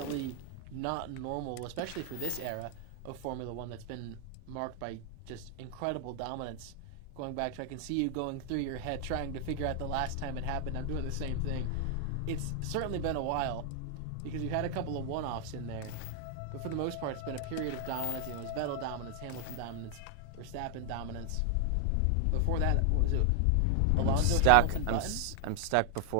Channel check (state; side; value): different; both; correlation 0.00